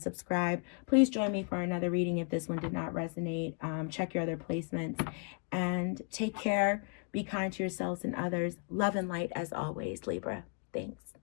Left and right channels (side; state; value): right; quieter; 37.4 dB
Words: subscribe. Please join me for another reading if this one did not resonate. Check your other placements, and take care. Be kind to yourselves and others. Love and light as always, Libra. Thanks.